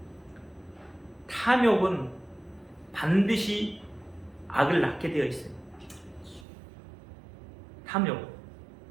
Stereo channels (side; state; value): left; drops out; at 6.5 s